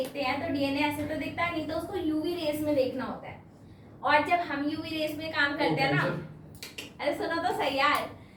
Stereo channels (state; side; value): identical; both; correlation 1.00